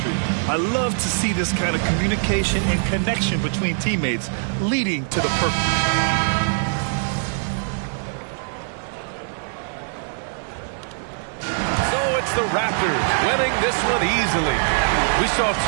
I love to see this kind of communication and connection between teammates leading to the purpose. So it's the Raptors winning this one easily. We saw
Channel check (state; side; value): silent; left; digital silence